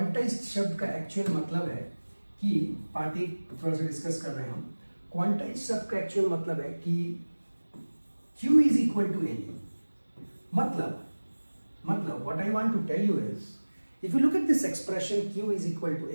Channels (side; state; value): both; inverted; correlation -1.00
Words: शब्द का actual मतलब है कि पार्टी थोड़ा सा डिस्कस कर रहे हैं हम. Quantized शब्द का actual मतलब है कि Q is equal to NE. मतलब what I want to tell you is, if you look at this expression Q is equal to